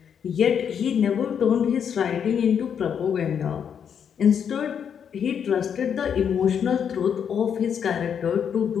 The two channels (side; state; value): right; quieter; 7.8 dB